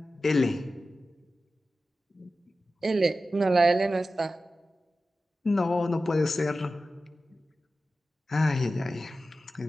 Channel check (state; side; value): normal; both; correlation 0.93